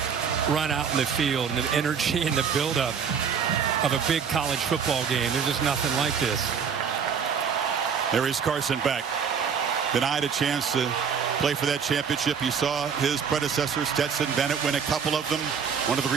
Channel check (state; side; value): quieter; left; 6.8 dB